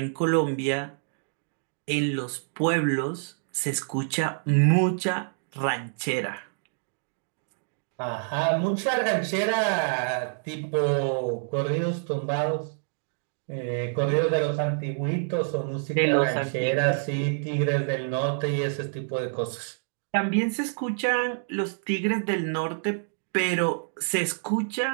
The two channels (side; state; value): left; silent; digital silence